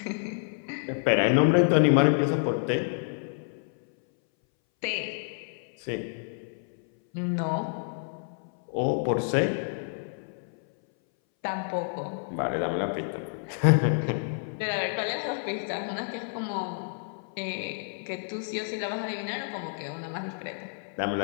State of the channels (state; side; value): silent; right; 59 dB below the other